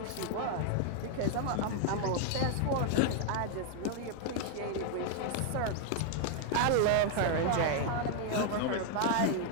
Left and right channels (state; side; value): different; both; correlation 0.00